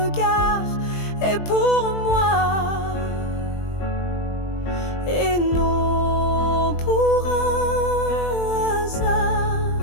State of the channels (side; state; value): right; late; 20 ms